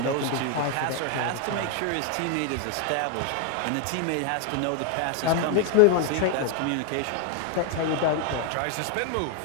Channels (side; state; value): both; different; correlation 0.01